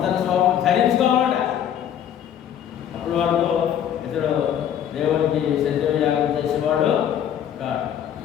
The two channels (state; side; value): quieter; right; 9.7 dB